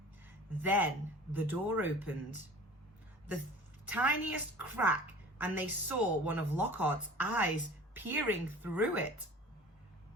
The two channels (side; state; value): both; normal; correlation 0.43